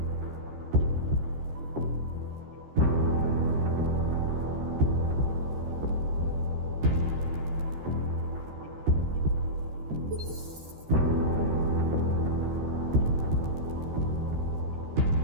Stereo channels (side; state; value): left; late; 13 ms